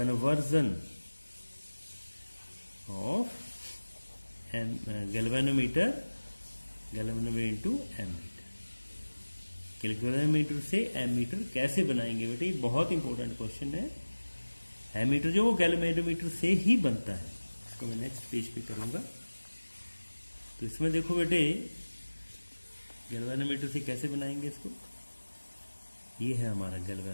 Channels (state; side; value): inverted; both; correlation -1.00